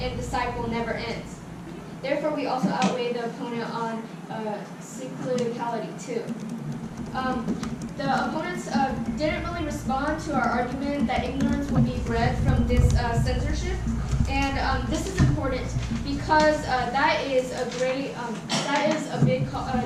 the cycle never ends. Therefore, we also outweigh the opponent on cyclicality too. The opponents didn't really respond to our argument that ignorance would be bred from this censorship, and this is important because that is a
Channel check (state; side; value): identical; both; correlation 1.00